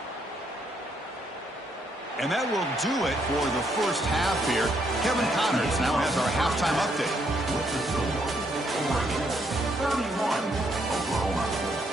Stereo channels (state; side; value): normal; both; correlation 0.73